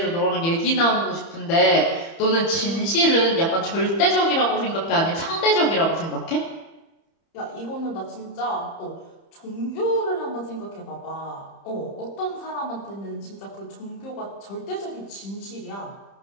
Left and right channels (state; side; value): late; right; 30 ms